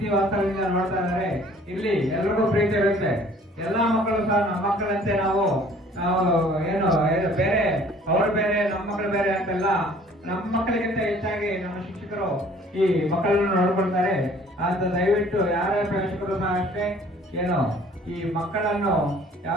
ವಾಸ್ತವದಿಂದ ನೋಡ್ತಾ ಇದ್ದಾರೆ. ಇಲ್ಲಿ ಎಲ್ರಿಗೂ ಪ್ರೀತಿ ಇರುತ್ತೆ. ಎಲ್ಲಾ ಮಕ್ಕಳು ಸಹ ನಮ್ಮ ಮಕ್ಕಳಂತೆ ನಾವು ಏನು ಬೇರೆ ಅವರು ಬೇರೆ ನಮ್ಮ ಮಕ್ಕಳು ಬೇರೆ ಅಂತೆಲ್ಲ, ನಮ್ಮ ಮಕ್ಕಳಿಗಿಂತ ಹೆಚ್ಚಾಗಿ ನಮ್ಮ ಶಿಕ್ಷಕರು ಈ ಮಕ್ಕಳನ್ನು ನೋಡ್ಕೊಳ್ತಾರೆ ಅಂತ ದಯವಿಟ್ಟು ಯಾರೇ ಪೋಷಕರು ಸಹ ಅಷ್ಟೇ ಏನು ಈ ಮಕ್ಕಳನ್ನು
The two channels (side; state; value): both; normal; correlation 0.54